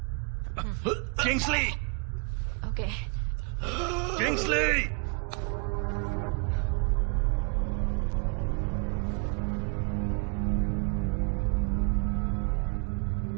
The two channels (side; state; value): left; quieter; 34.8 dB